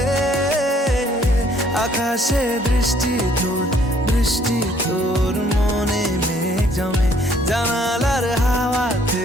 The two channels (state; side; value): normal; both; correlation 0.63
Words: আকাশে দৃষ্টি তোর মনে মেঘ জমে, জানালার হাওয়াতে